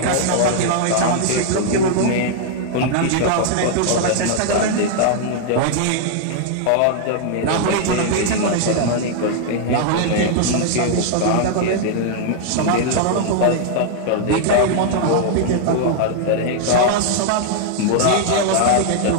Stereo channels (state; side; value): different; both; correlation -0.01